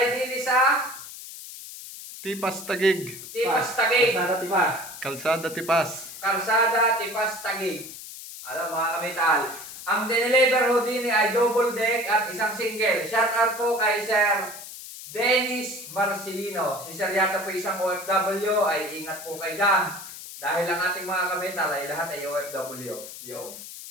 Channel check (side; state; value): left; noise; hiss, 12 dB below the sound